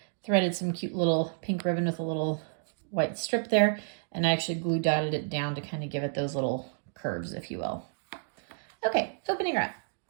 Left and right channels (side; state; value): left; silent; digital silence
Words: threaded some cute little pink ribbon with a little white strip there, and I actually glue dotted it down to kind of give it those little curves, if you will. Okay, opening her up.